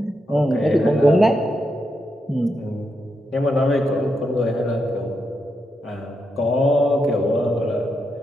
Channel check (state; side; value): normal; both; correlation 0.83